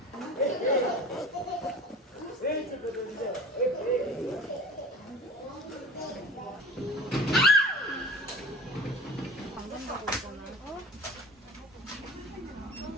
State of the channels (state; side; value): normal; both; correlation 0.39